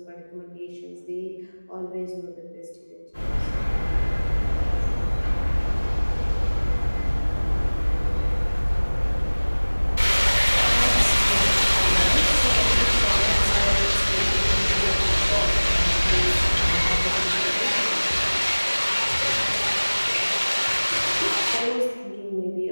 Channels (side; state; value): both; inverted; correlation -1.00